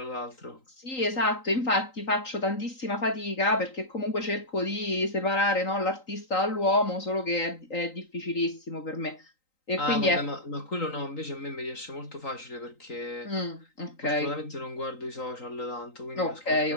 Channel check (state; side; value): late; right; 3.9 ms